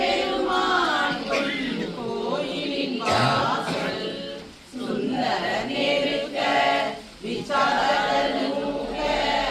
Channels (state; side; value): identical; both; correlation 1.00